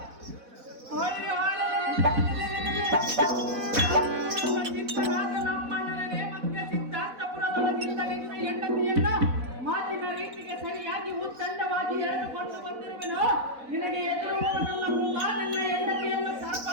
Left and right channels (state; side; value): late; left; 4.1 ms